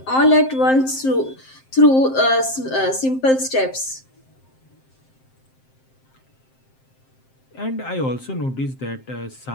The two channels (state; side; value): late; right; 7.6 ms